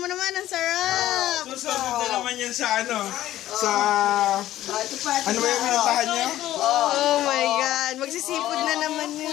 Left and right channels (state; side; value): quieter; right; 13.9 dB